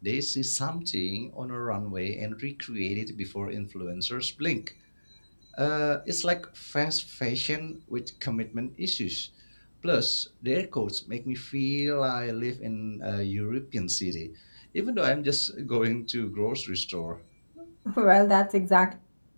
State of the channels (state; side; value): inverted; both; correlation -1.00